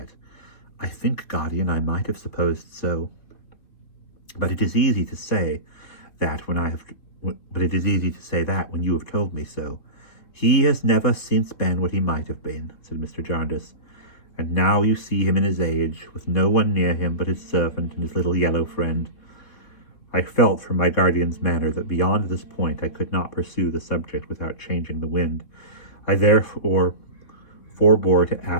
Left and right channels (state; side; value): late; right; 3.1 ms